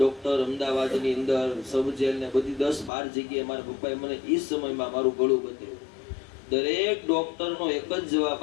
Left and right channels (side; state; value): right; drops out; at 2.9 s